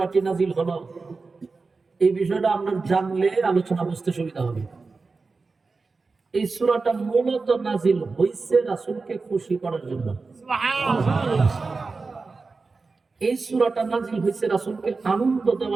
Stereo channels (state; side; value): quieter; left; 4.1 dB